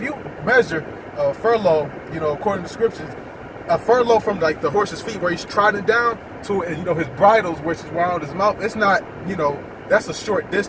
you measure a furlong, according to scriptures, a furlong from like the horse's feet where he's trodden down to, his bridles, which is around his mouth, it's not, that's a short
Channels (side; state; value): both; identical; correlation 1.00